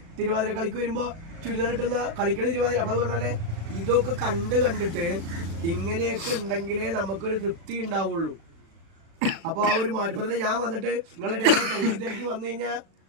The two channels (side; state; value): left; late; 36 ms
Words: തിരുവാതിര കളിക്ക് വരുമ്പോ ചുരിദാർ ഇട്ടുന്ന കളിക്കണ തിരുവാതിര. അപ്പൊ അത് പറഞ്ഞാലേ ഇതൊക്കെ കണ്ടിട്ട് ഇങ്ങനെയൊക്കെ ഉണ്ടെങ്കിലേ നമുക്കൊരു തൃപ്തി ഉണ്ടാവുള്ളൂ. അപ്പൊ ആ ഒരു മാറ്റപ്പത്തിന് ഞാൻ വന്നിട്ട് നിങ്ങളുടെ തിരക്കി വന്നു കഴിഞ്ഞാൽ